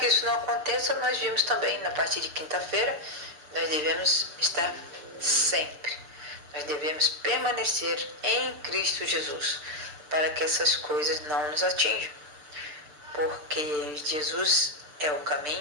isso não aconteça, nós vimos também, na parte de quinta-feira, nós devemos estar sempre. Nós devemos permanecer em Cristo Jesus, para que essas coisas não nos atinjam. Porque Jesus é o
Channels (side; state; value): left; late; 6.7 ms